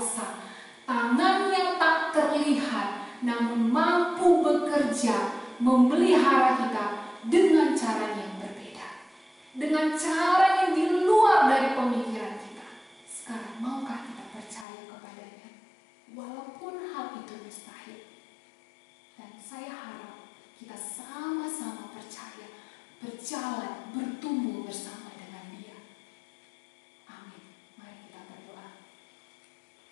Tangannya tak terlihat, namun mampu bekerja memelihara kita dengan cara yang berbeda. Dengan cara yang di luar dari pemikiran kita. Sekarang maukah kita percaya kepadanya? Walaupun hal itu mustahil. Dan saya harap kita sama-sama percaya, berjalan, bertumbuh bersama dengan Dia. Amin. Mari kita berdoa.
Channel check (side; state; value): right; drops out; at 14.7 s